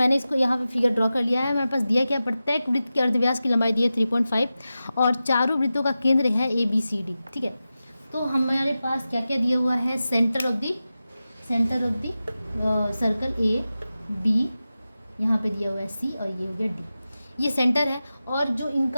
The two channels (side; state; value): both; inverted; correlation -0.94